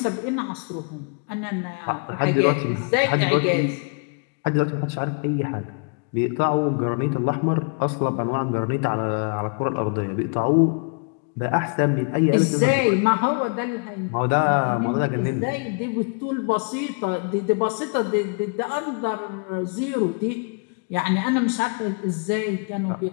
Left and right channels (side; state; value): right; quieter; 35.5 dB